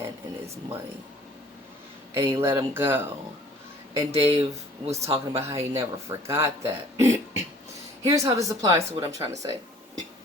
and his money." And he let him go. And Dave was talking about how he never forgot that. Here's how this applies to what I'm trying to say.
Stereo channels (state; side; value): normal; both; correlation 0.53